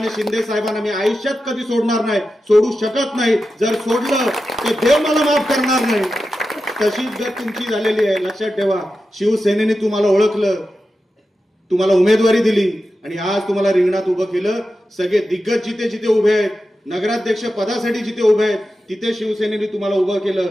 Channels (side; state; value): both; normal; correlation 0.91